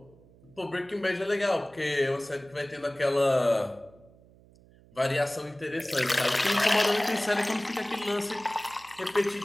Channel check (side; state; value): right; noise; hum, 26 dB below the sound